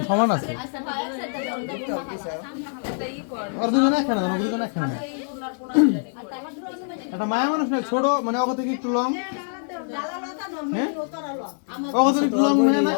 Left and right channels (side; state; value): right; silent; 58 dB below the other